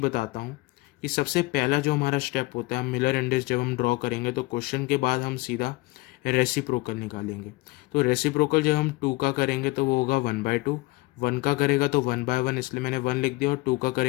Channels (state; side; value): quieter; right; 22.8 dB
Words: हूँ कि सबसे पहला जो हमारा स्टेप होता है मिलर इंडेक्स जब हम ड्रॉ करेंगे तो क्वेश्चन के बाद हम सीधा रेसिप्रोकल निकालेंगे। तो रेसिप्रोकल जब हम 2 का करेंगे तो वो होगा 1/2, 1 का करेगा तो 1/1, इसलिए मैंने 1 लिख दिया, और 2 का